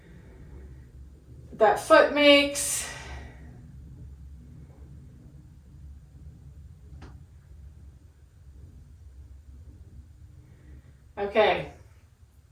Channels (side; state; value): both; identical; correlation 1.00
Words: that foot makes. Okay,